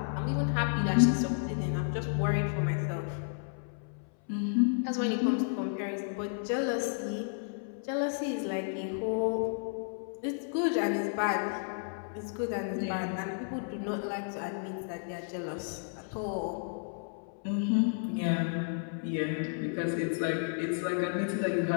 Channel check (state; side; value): silent; right; 56 dB below the other